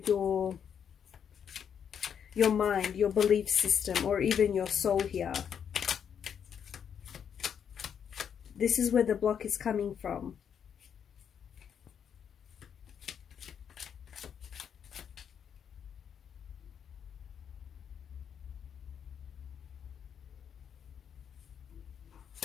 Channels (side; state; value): right; quieter; 7.9 dB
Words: your mind, your belief system, or even your soul here. This is where the block is coming from.